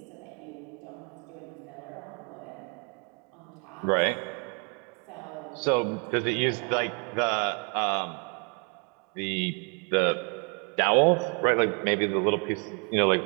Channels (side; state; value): left; quieter; 36.7 dB